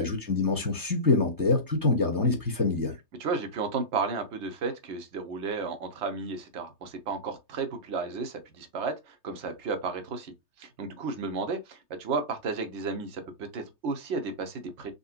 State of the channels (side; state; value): left; late; 3.3 ms